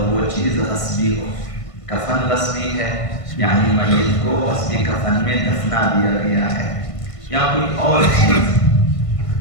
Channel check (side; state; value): right; late; 1.5 ms